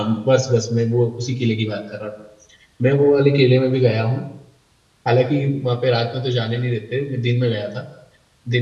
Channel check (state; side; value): identical; both; correlation 1.00